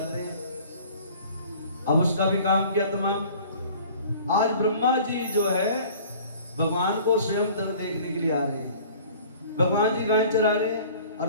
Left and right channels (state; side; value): inverted; both; correlation -0.48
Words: हैं। अब उसका भी काम किया तमाम। आज ब्रह्मा जी जो है भगवान को स्वयं देखने के लिए आ रहे हैं। भगवान जी गाय चरा रहे हैं और